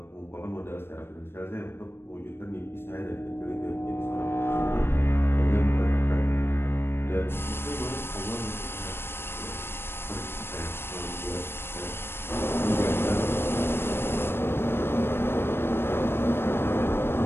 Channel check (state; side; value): late; right; 0.11 ms